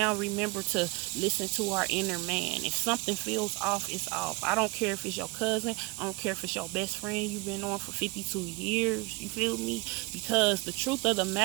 remember to listen to our inner man. If something feels off, it's off. I don't care if it's your cousin. I don't care if it's your best friend you've been on for 52 years. You feel me? Because the truth of the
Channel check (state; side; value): quieter; left; 26.0 dB